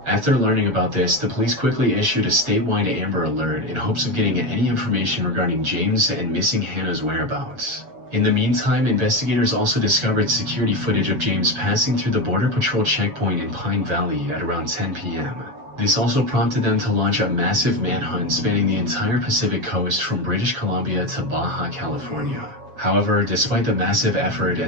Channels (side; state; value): left; late; 7.1 ms